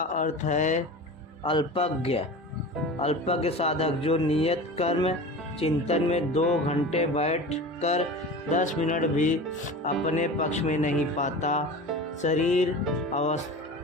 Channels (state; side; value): normal; both; correlation 0.33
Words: है अल्पज्ञ। अल्पज्ञ साधक जो नियत कर्म चिंतन में 2 घंटे बैठकर 10 मिनट भी अपने पक्ष में नहीं पाता। शरीर